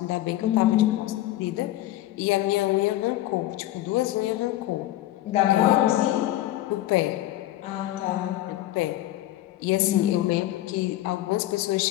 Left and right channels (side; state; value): right; quieter; 15.2 dB